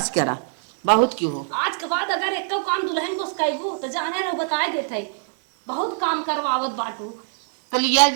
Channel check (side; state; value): left; silent; 63 dB below the other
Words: करा बहुत क्यों हो। आज के बाद अगर एक काम दुल्हन को सिखाइबू तो जाने रहो बताए देते बहुत काम करवावत बाटू। तो लिया